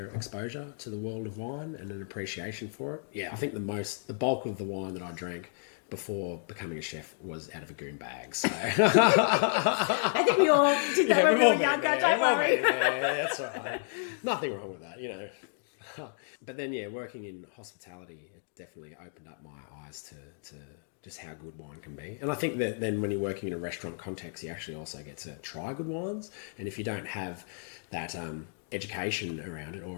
exposure to the world of wine and an appreciation for it. Yeah, I think the bulk of the wine that I drank before becoming a chef was out of a goon bag. So I think we all did that when we were younger, don't worry. Yeah, that's right. Nothing wrong with that, But then, working in hospitality, it definitely opened up my eyes to just how good wine can be. And I think that then when you're working in a restaurant context, you actually also get to try good wines. And if you don't have that education around it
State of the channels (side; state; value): right; silent; digital silence